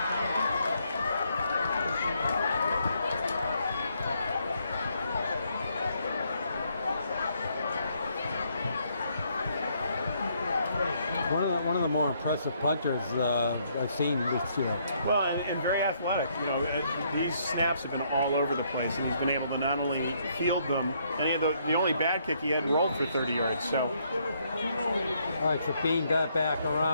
One of the more impressive punters I've seen this year. Well, and very athletic. You know, these snaps have been all over the place, and he's been able to not only field them, and he had the only bad kick he had rolled for 30 yards. So, All right, so Bean got back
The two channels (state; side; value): inverted; both; correlation -0.71